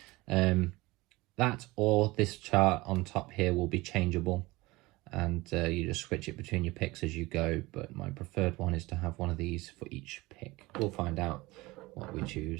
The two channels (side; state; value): left; quieter; 21.1 dB